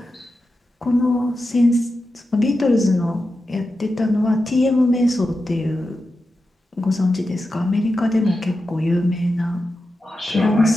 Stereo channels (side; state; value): both; normal; correlation 0.90